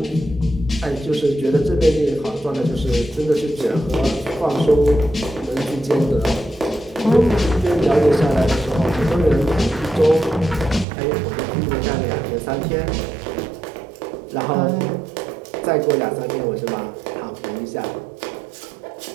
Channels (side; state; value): left; drops out; at 10.9 s